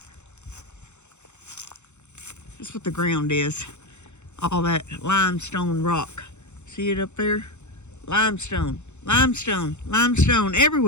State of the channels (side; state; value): right; late; 0.83 ms